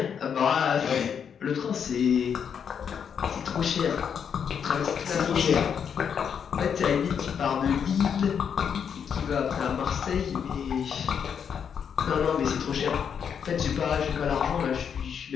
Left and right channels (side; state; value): right; quieter; 7.5 dB